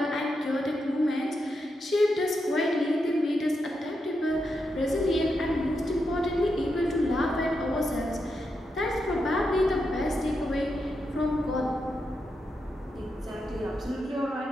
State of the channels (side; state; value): both; normal; correlation 0.85